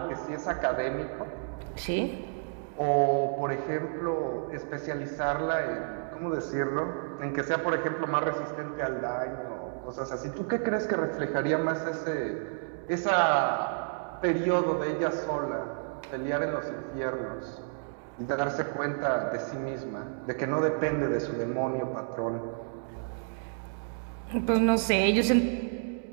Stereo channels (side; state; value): left; silent; digital silence